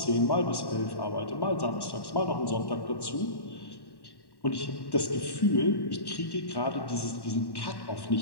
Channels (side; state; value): right; late; 1.1 ms